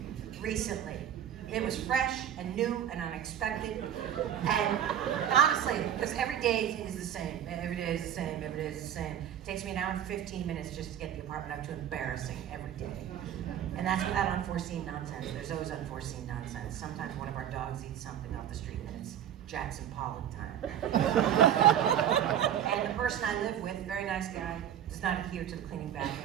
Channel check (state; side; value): quieter; left; 10.1 dB